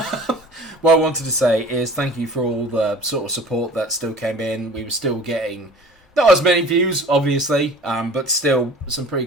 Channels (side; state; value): both; normal; correlation 0.44